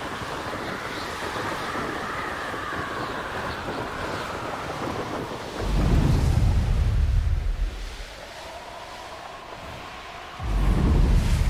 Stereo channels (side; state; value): both; identical; correlation 1.00